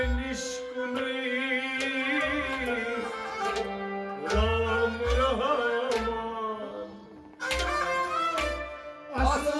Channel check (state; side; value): identical; both; correlation 1.00